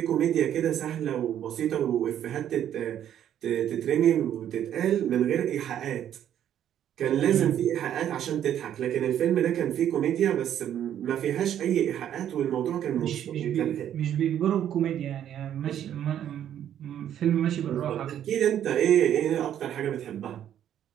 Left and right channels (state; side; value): quieter; left; 10.4 dB